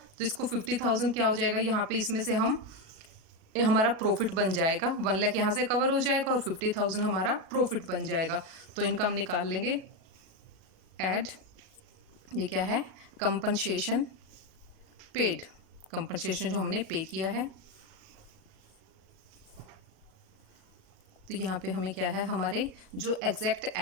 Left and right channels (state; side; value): late; left; 37 ms